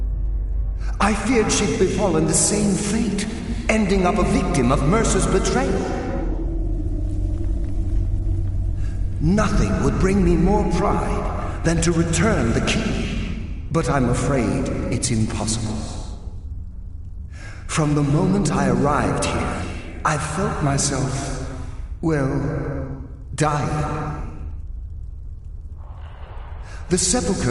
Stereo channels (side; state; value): both; identical; correlation 1.00